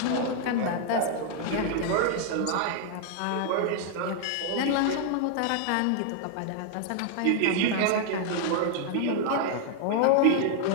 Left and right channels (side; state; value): both; different; correlation 0.00